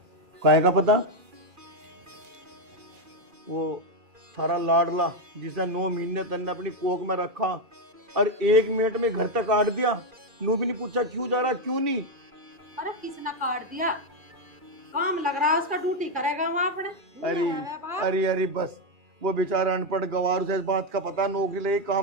काहे का पता? वो थारा लाडला जिसे 9 महीने तन्ने अपनी कोख में रखा और 1 मिनट में घर तक काट दिया, नू भी नहीं पूछा क्यों जा रहा क्यों नहीं। अरे किसने काट दिया? काम लग रहा है उसका, ड्यूटी करेगा वहाँ अपने। अरे बस, वो बेचारा अनपढ़ गवार, उसे इस बात का पता नौकरी लगी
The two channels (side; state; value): left; late; 2.4 ms